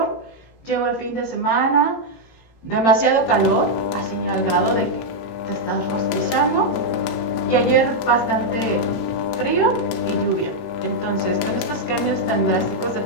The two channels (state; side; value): late; right; 18 ms